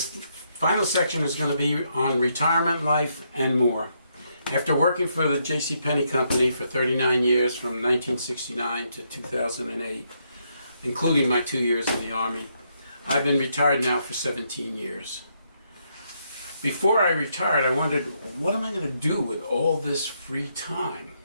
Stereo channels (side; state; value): both; inverted; correlation -0.77